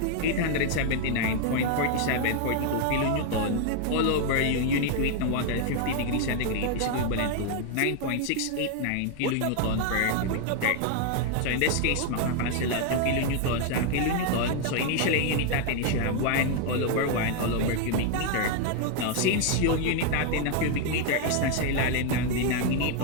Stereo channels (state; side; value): different; both; correlation 0.00